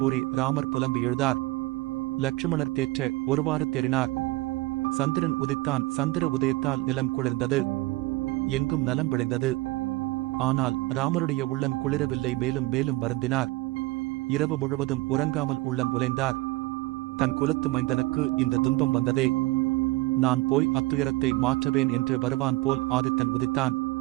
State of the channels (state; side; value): quieter; left; 20.3 dB